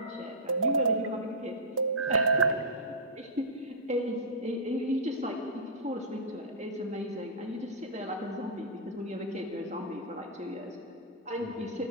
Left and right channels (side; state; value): both; normal; correlation -0.16